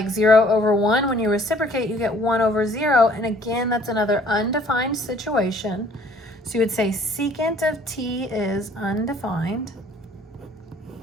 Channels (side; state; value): both; normal; correlation 0.57